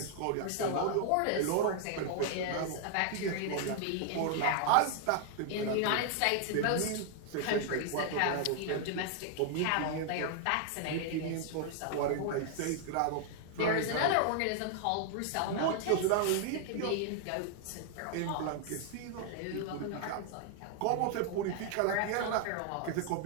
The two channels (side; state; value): both; different; correlation 0.00